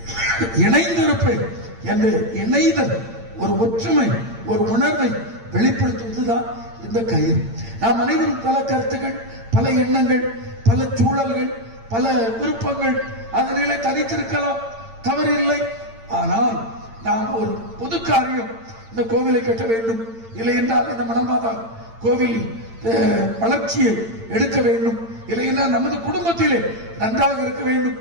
இணைந்திருப்பேன் என்ற இணைதல், ஒரு ஒற்றுமை, ஒரு உணர்வை வெளிப்படுத்துவதுதான் இந்த கயிறு. நாம் அனைவரும் பல கருத்துக்கள், பல எண்ணங்கள், பல சூழல்கள், பல விருப்பங்கள், அதனிலே தனித்திருக்கலாம், தவறில்லை. ஆனால் நாம் ஒரு பொது காரியம், இந்த கோவிலை கட்ட வேண்டும், இல்லை என்றால் இந்த மணமாதா கோவில் வளர்ச்சியை எடுக்க வேண்டும், இல்லை என்றால் நமது குடும்பத்திலே நன்றாக இருக்க வேண்டும்,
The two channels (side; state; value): left; late; 8.8 ms